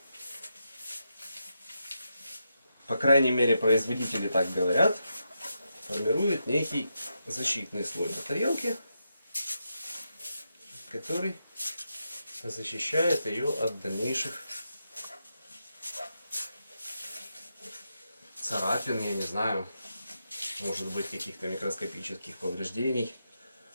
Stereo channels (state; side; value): inverted; both; correlation -0.85